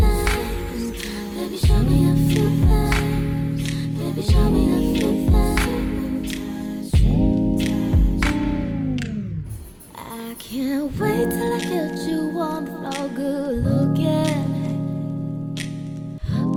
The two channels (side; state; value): both; identical; correlation 1.00